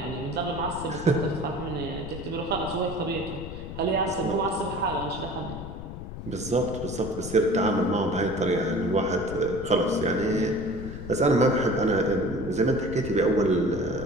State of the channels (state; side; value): noise; left; rumble, 9 dB below the sound